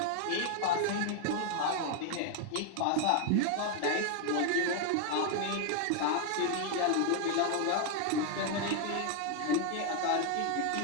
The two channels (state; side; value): different; both; correlation 0.00